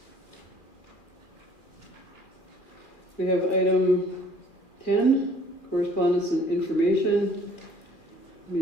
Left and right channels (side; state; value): right; late; 2.4 ms